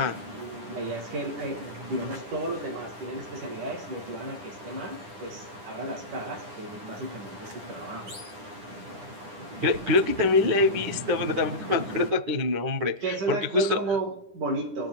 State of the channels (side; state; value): left; late; 10 ms